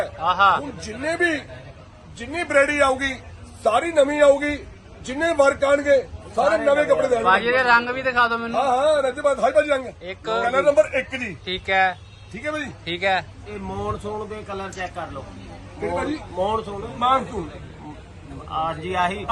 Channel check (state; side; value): identical; both; correlation 1.00